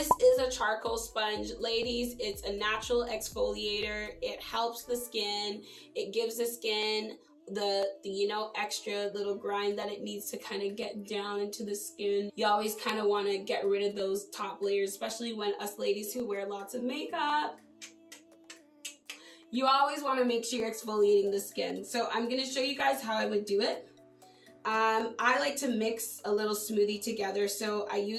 is a charcoal sponge. Ladies, it's a natural exfoliator. It helps the skin. It gives the skin the extra little grind that it needs to kind of get down into the skin. You always kind of want to get rid of those top layers, especially when us ladies who wear lots of makeup. You always want to make sure you're exfoliating the skin. So I'm going to show you guys how I would do it. I like to mix a little smoothie together, so I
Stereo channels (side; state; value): both; identical; correlation 1.00